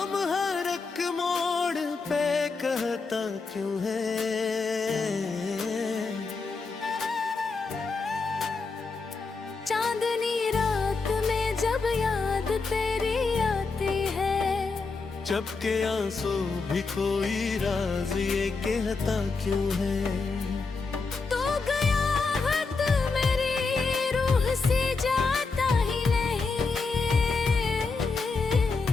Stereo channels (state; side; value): quieter; right; 4.3 dB